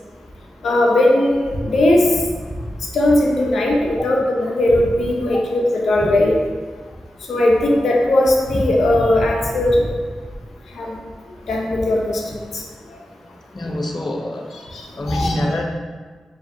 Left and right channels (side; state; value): both; normal; correlation 0.90